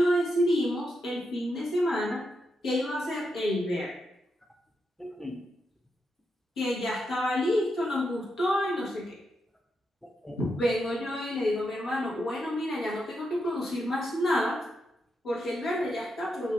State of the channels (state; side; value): normal; both; correlation 0.84